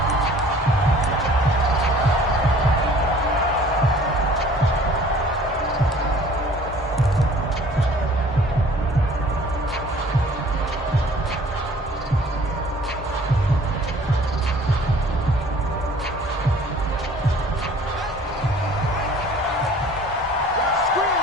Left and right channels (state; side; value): normal; both; correlation 0.51